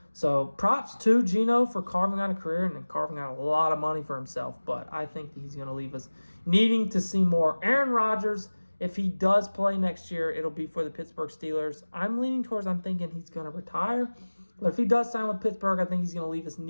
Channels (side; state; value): both; inverted; correlation -1.00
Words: So props to Geno for carving out a career and then carving out a lot of money for himself. But I think that he's going to leave us needing to see more. Aaron Rodgers, if he does play next year, it'll be for the Pittsburgh Steelers. I'm thinking he's going to retire. But if he does sign with Pittsburgh, I think he's going to leave us